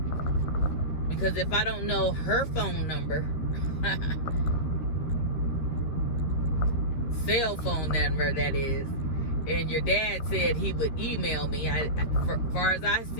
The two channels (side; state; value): right; late; 13 ms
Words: Because if I don't know her phone number, cell phone number that is, and your dad said he would email me, as far as I